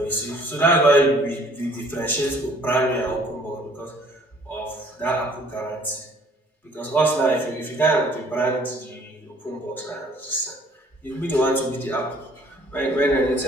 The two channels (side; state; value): both; normal; correlation 0.57